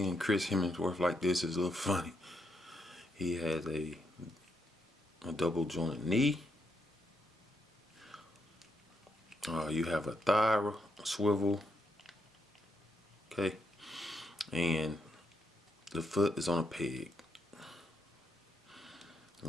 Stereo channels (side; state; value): both; normal; correlation 0.79